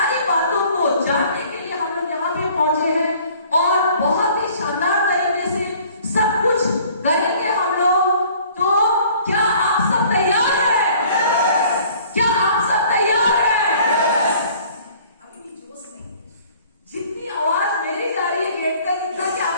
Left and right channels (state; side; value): inverted; both; correlation -0.53